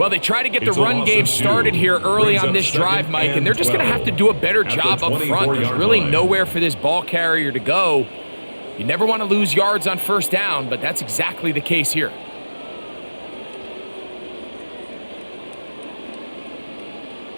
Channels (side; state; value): both; inverted; correlation -1.00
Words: they try to get the run game started here early on this drive, Mike, and they're just going to have to do a better job up front. There's really nowhere for this ball carrier to go. You never want to lose yards on first down, but that's exactly the case here.